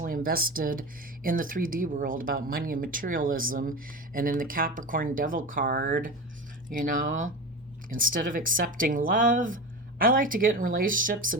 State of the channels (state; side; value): normal; both; correlation 0.26